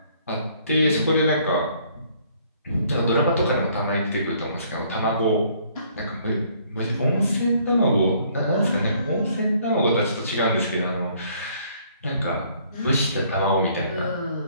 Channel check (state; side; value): inverted; both; correlation -0.62